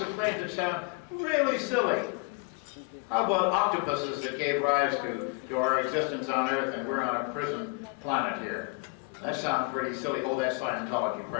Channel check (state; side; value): quieter; right; 29.8 dB